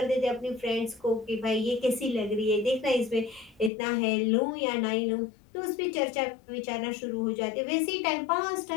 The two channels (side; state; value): right; drops out; at 3.7 s